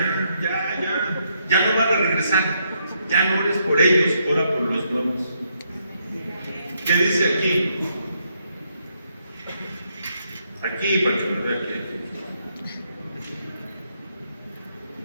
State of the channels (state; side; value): inverted; both; correlation -0.76